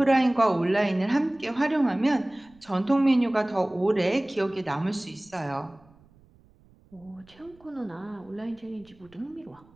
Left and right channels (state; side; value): noise; right; rumble, 28 dB below the sound